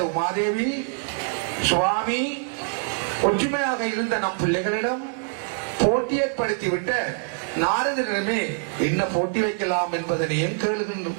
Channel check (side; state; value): left; silent; 62 dB below the other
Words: உமாதேவி, சுவாமி, ஒற்றுமையாக இருந்த நம் பிள்ளைகளிடம் போட்டி ஏற்படுத்திவிட்ட நாரதரிடமே என்ன போட்டி வைக்கலாம் என்பதனையும்